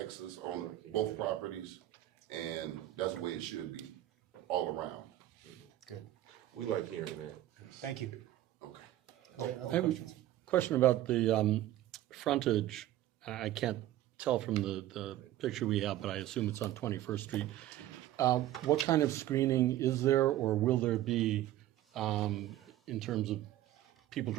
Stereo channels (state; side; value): quieter; left; 13.9 dB